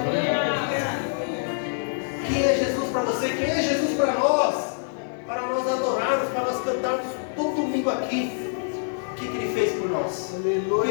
Quem é Jesus para você? Quem é Jesus para nós? Para nós adorarmos, para nós cantarmos todo domingo aqui. O que Ele fez por nós? O que Ele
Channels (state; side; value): silent; right; 61 dB below the other